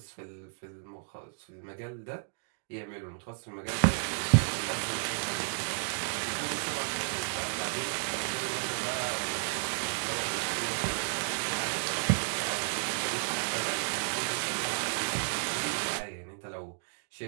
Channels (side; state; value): left; silent; digital silence